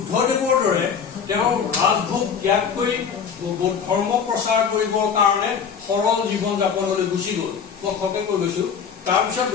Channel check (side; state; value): right; quieter; 6.8 dB